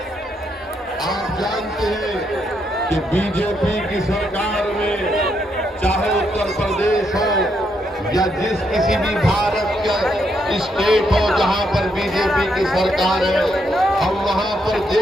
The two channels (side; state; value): both; normal; correlation 0.77